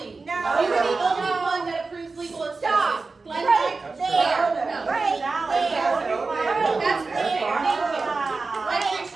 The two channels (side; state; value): left; quieter; 4.0 dB